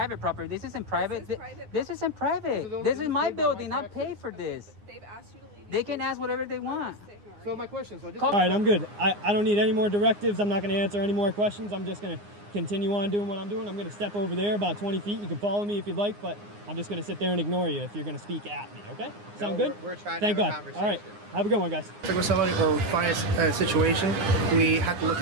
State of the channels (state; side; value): late; left; 9.7 ms